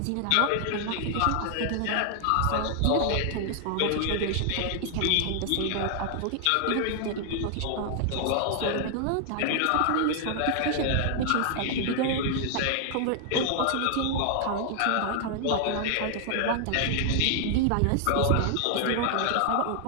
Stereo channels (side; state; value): both; different; correlation 0.00